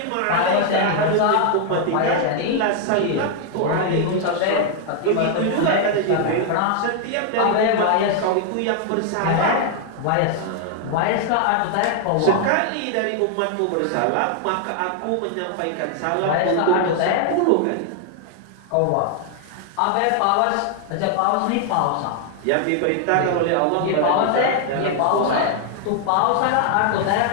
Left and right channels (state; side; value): different; both; correlation 0.00